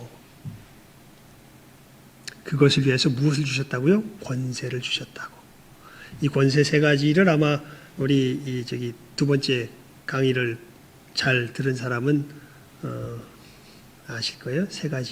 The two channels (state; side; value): identical; both; correlation 1.00